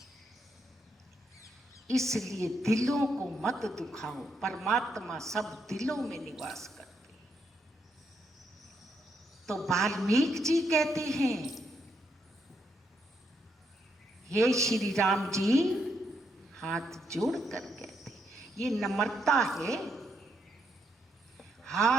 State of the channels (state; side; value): normal; both; correlation 0.77